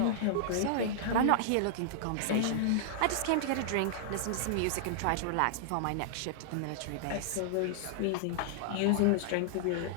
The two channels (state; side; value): different; both; correlation -0.01